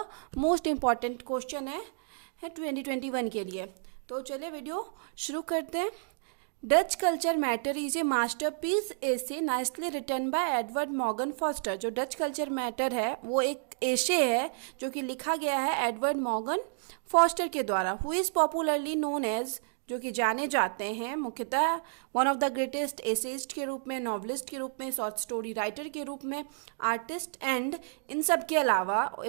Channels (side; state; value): left; silent; digital silence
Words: most important question है 2021 के लिए। तो चलिए वीडियो शुरू करते हैं। Does culture matter is a masterpiece essay nicely written by Edward Morgan Forster. जो डच कल्चर मैटर है वो एक एसे है जो कि लिखा गया है एडवर्ड मॉर्गन फॉस्टर के द्वारा, who is popularly known as, जो कि जाने जाते हैं मुख्यतः one of the greatest essayist के रूप में, नॉवलिस्ट के रूप में, शॉर्ट स्टोरी राइटर के रूप में, आर्टिस्ट एंड इन सब के अलावा